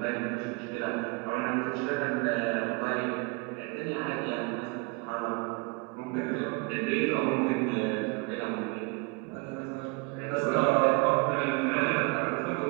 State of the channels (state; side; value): quieter; left; 28.9 dB